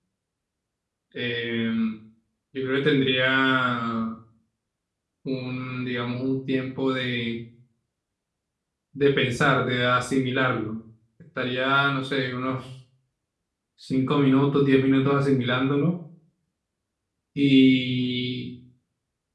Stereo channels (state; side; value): identical; both; correlation 1.00